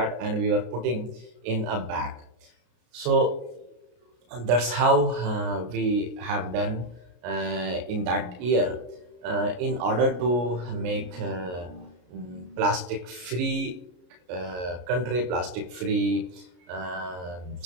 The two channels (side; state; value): left; late; 33 ms